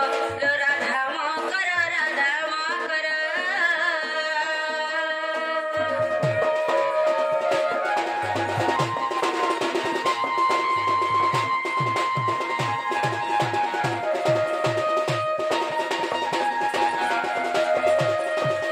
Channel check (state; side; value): identical; both; correlation 1.00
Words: রাধা মা কর রাধা মা কর